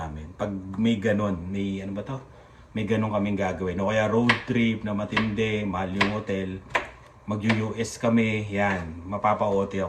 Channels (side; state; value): both; identical; correlation 1.00